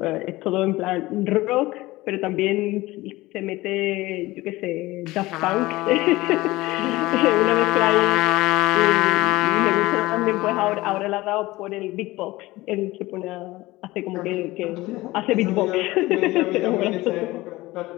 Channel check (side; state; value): right; quieter; 19.3 dB